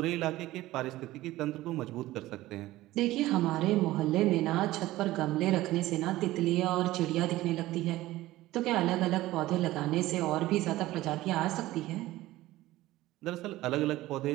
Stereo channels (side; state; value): left; quieter; 16.8 dB